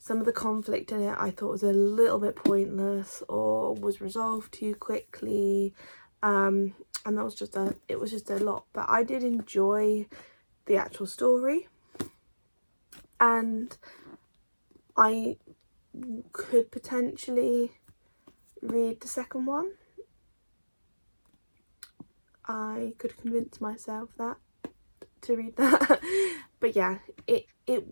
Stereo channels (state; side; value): inverted; both; correlation -1.00